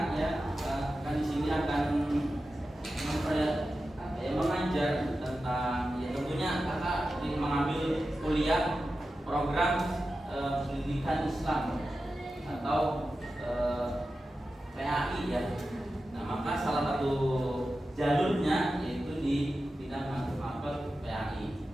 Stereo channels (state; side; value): normal; both; correlation 0.92